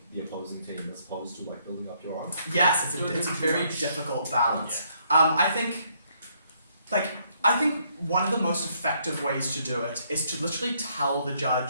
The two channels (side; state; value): both; inverted; correlation -0.70